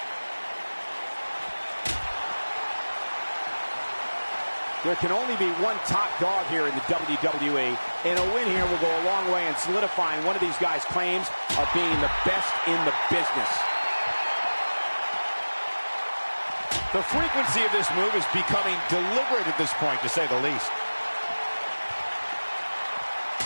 There can only be one top dog here in the WWE, and a win here will go a long way in solidifying one of these guys' claims of being the best in the business. The frequency of this move is becoming deliberate at this point, to say the least.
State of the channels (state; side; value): inverted; both; correlation -1.00